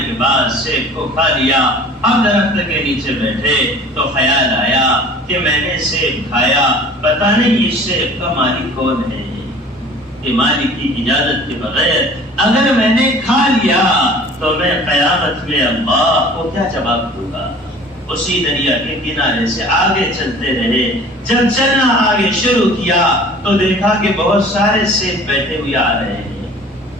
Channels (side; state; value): both; normal; correlation 0.46